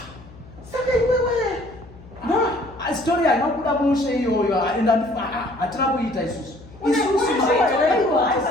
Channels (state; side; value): noise; left; hum, 20 dB below the sound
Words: saka iwewe. Story hainobuda mushe iyoyo ende hatina kuita isusu.